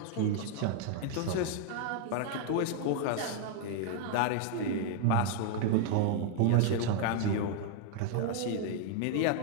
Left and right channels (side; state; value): both; different; correlation 0.00